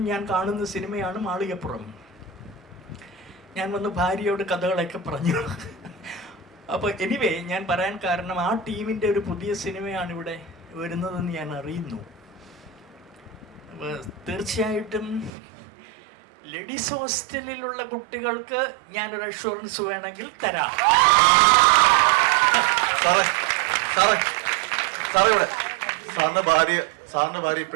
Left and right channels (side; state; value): left; drops out; at 15.3 s